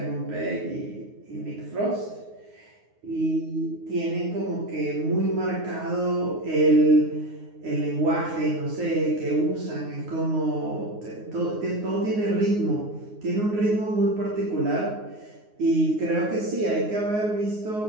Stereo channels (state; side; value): late; left; 9.5 ms